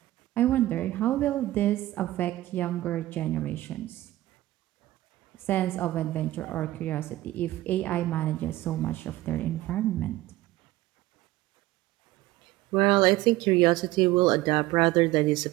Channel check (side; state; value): left; quieter; 16.6 dB